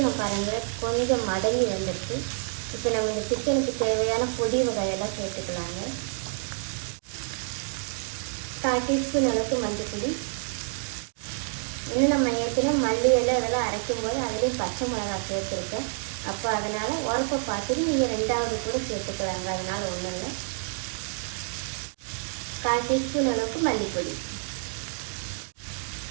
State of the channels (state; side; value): silent; left; 59 dB below the other